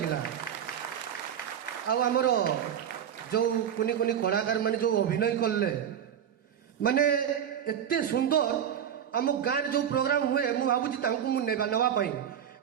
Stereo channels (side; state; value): left; quieter; 9.1 dB